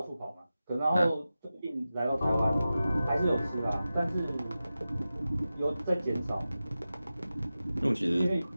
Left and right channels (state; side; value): inverted; both; correlation -0.94